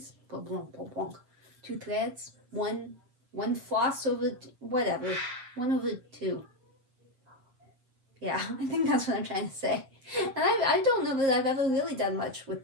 2 threads, one floss over, whatever, 1 over 2. Yeah, I think that's what I'm trying to say. And I don't know that I've ever really done much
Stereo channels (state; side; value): late; left; 7.4 ms